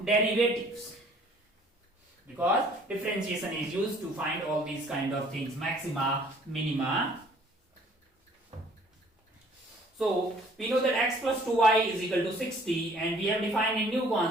derivatives, because differentiation is used to find all these kind of things, maxima, minima. So we know that x plus 2y is equal to 60, and we have defined a new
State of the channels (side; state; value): both; normal; correlation 0.57